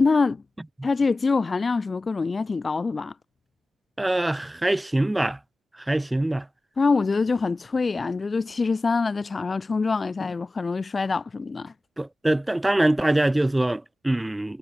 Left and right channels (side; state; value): both; normal; correlation 0.96